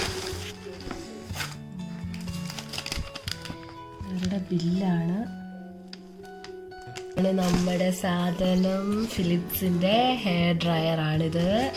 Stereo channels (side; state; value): both; identical; correlation 1.00